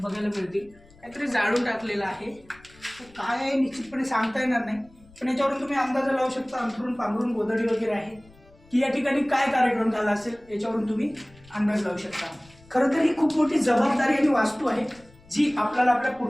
मिळतील. काहीतरी जाळून टाकलेलं आहे. काय आहे निश्चितपणे सांगता येणार नाही, पण याच्यावरून तुम्ही अंदाज लावू शकता. अंथरून पांघरून गोधडी वगैरे आहे की या ठिकाणी काय कार्यक्रम झाला असेल याच्यावरून तुम्ही अंदाज लावू शकता. खरं तर ही खूप मोठी जबाबदारी आणि वास्तू आहे जी आपल्याला आपल्या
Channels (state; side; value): noise; left; rumble, 27 dB below the sound